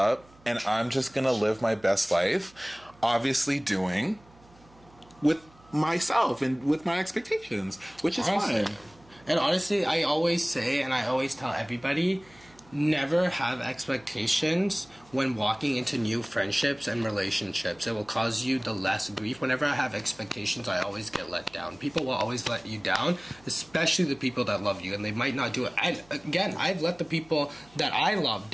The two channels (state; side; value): noise; right; hum, 27 dB below the sound